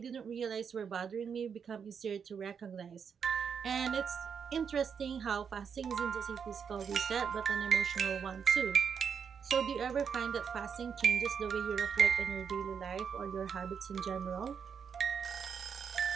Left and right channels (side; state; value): left; quieter; 6.9 dB